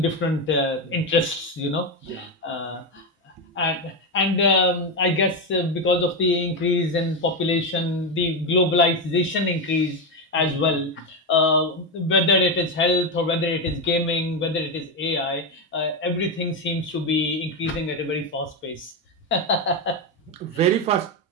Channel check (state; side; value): normal; both; correlation 0.10